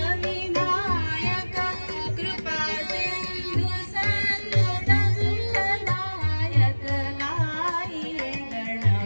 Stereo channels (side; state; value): both; inverted; correlation -1.00